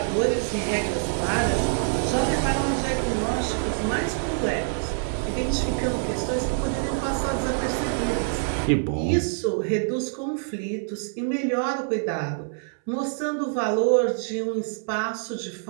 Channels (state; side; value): silent; left; 61 dB below the other